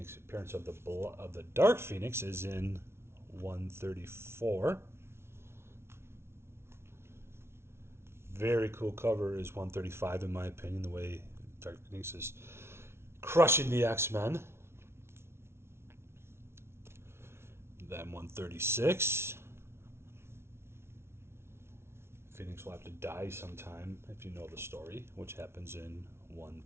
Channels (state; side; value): late; left; 0.12 ms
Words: of the Dark Phoenix is in 134. Very cool cover is 135, in my opinion, the way Dark Phoenix is crushing the X-Men. Then 136. Phoenix will have to die sometime if you know the story, which happens in